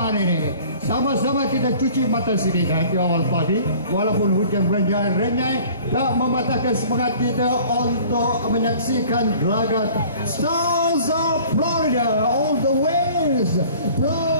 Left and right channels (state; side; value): inverted; both; correlation -0.49